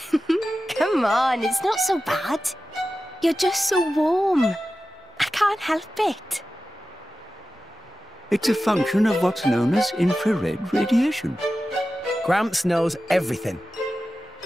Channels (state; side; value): normal; both; correlation 0.94